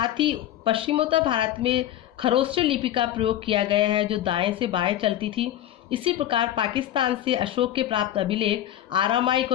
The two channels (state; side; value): quieter; right; 12.3 dB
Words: ही पश्चिमोत्तर भारत में खरोष्ट लिपि का प्रयोग किया गया है, जो दाएं से बाएं चलती थी। इसी प्रकार पाकिस्तान से अशोक के प्राप्त अभिलेख आरामाइक